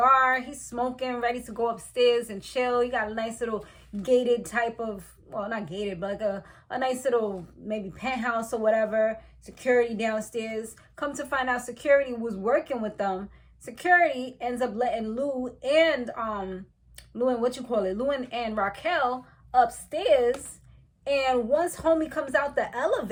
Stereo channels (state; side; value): identical; both; correlation 1.00